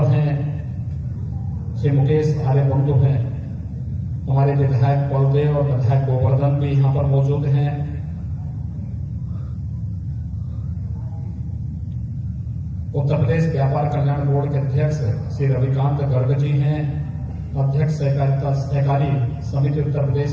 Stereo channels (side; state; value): both; identical; correlation 1.00